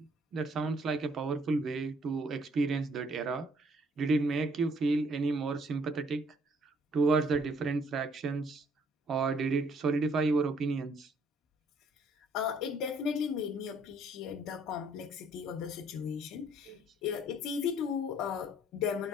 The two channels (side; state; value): both; normal; correlation 0.63